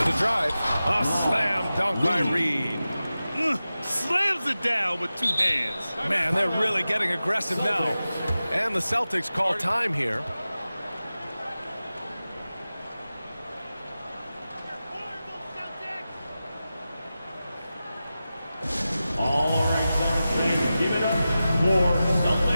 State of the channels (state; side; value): inverted; both; correlation -0.94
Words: a drive. A slam dunk by Reed. Slams it down with 2 hands. Man, they're really getting aggressive now. And the Celtics call time here. All right, Celtics fans, give it up for